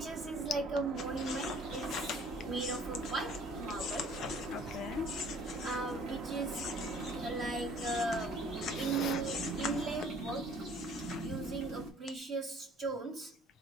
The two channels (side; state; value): both; normal; correlation 0.54